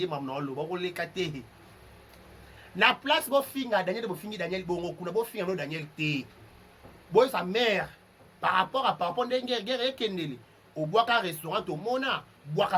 maman lo on les kate na place bo finga Daniel bongo kuna bo finga no Daniel te boy sa mère par rapport ndenge guerre ekendeli au bois ka restaurant au mona bois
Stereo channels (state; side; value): identical; both; correlation 1.00